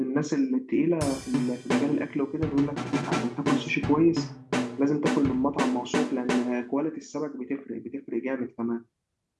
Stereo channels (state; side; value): identical; both; correlation 1.00